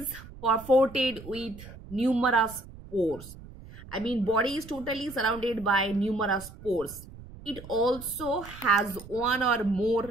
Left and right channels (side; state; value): right; noise; rumble, 17 dB below the sound